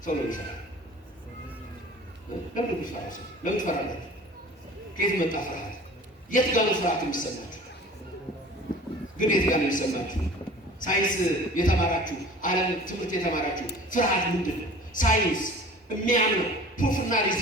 ሰው ለምን ይፈራል? ለምን ይፈራል? ሰው ለምን ትፈራለህ? ከየት መጣ ፍርሃት? የት ጋር ነው ፍርሃት የሚሰማችሁ? ግን የት ጋር ነው የሚሰማችሁ? ሳይንስ የተማራችሁ ዓለም ትምህርት የተማራችሁ ፍርሃት ምንድን ነው? ሳይንስ የሚያምነው ፕሩፍና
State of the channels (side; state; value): both; normal; correlation 0.44